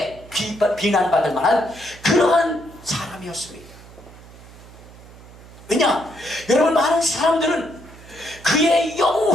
비난받을 만한 그러한 사람이었습니다. 왜냐? 여러분, 많은 사람들은 그의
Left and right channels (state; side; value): noise; right; hum, 20 dB below the sound